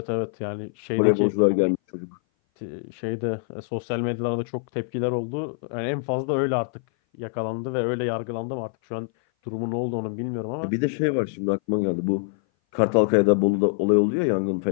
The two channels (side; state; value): right; silent; 58 dB below the other